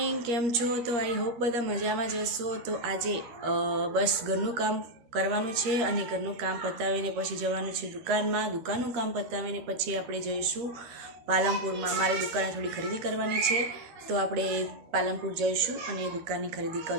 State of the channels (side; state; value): left; late; 13 ms